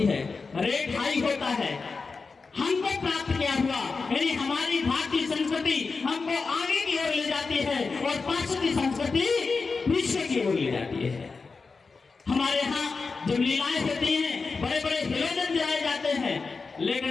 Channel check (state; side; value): quieter; right; 4.4 dB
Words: है, रेट हाई होता है। हमको प्राप्त क्या हुआ, यानी हमारी भारतीय संस्कृति हमको आगे की ओर ले जाती है और पाश्चात्य संस्कृति पीछे की ओर ले जाती है। हमारे यहाँ जब लीलाएं होती हैं, बड़े बड़े हेलोजन जलाए जाते हैं,